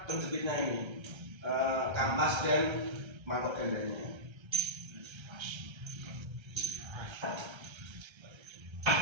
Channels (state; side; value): late; left; 1.3 ms